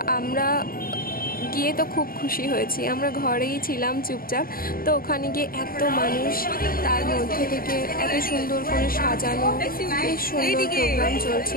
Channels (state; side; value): late; right; 0.42 ms